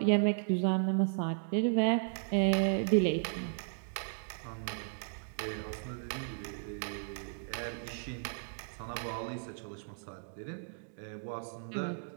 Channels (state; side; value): silent; left; digital silence